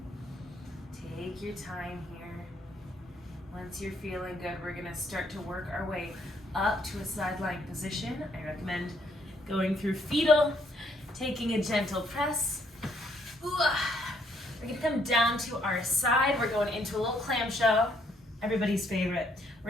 Take your time here. Once you're feeling good, we're going to start to work our way up to a side plank position. I recommend going through fetal, taking a gentle press. Ooh. We're going to come down to our side. We're going into a little clamshell, everybody's favorite.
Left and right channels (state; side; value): normal; both; correlation 0.69